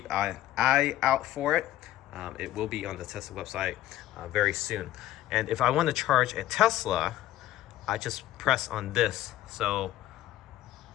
an eye out for it. It will be on the Tesla website very soon. And if I want to charge a Tesla, I just press on this. So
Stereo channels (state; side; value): quieter; right; 14.1 dB